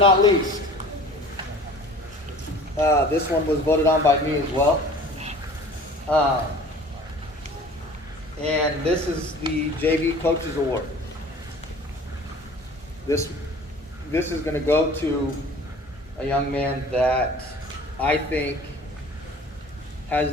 least, this one was voted on by me as well. And this is the JV Coaches Award. This is going to go to a young man that I think has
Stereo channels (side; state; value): both; normal; correlation 0.45